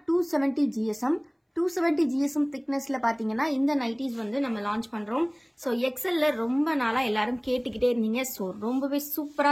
270 GSM 270 GSM திக்னஸ்ல பாத்தீங்கன்னா இந்த நைட்டிஸ் வந்து நம்ம லான்ச் பண்றோம். ஸோ எக்ஸல்ல ரொம்ப நாளா எல்லாரும் கேட்டுக்கிட்டே இருந்தீங்க. ஸோ ரொம்பவே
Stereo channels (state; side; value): identical; both; correlation 1.00